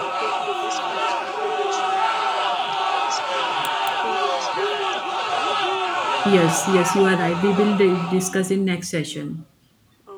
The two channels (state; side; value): identical; both; correlation 1.00